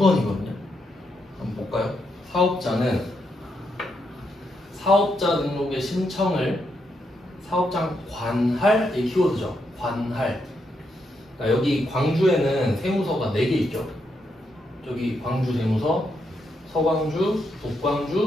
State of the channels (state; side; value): normal; both; correlation 0.80